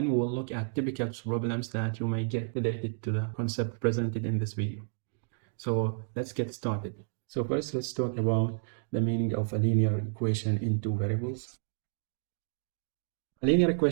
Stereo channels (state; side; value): silent; left; digital silence